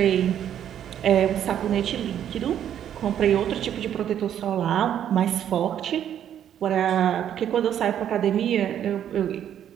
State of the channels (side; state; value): left; quieter; 10.0 dB